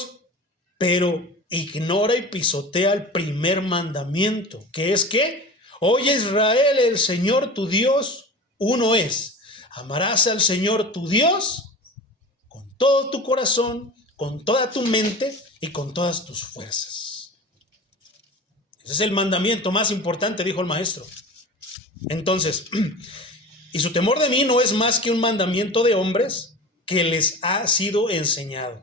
pero ignora y pisotea el primer mandamiento, que es que, oye Israel, el Señor tu Dios, uno es. Amarás al Señor tu Dios con todo tu corazón, con toda tu mente y con todas tus fuerzas. Ese es el mandamiento más importante, dijo el maestro. Entonces, y su temor de mí no es más que un mandamiento de hombres que les ha sido enseñado.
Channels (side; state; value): both; normal; correlation 0.34